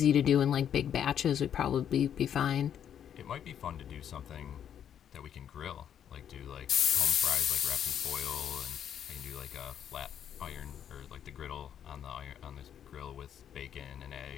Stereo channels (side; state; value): right; quieter; 9.2 dB